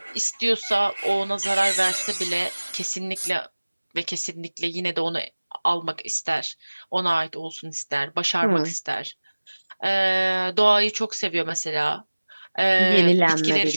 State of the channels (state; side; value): inverted; both; correlation -1.00